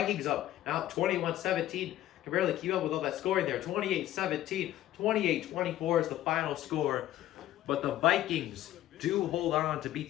up. Now 21-17. Can barely keep up with all that scoring there. 28-17. 28-24 is the final score. But the Vikings do hold on to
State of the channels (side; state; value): right; quieter; 13.6 dB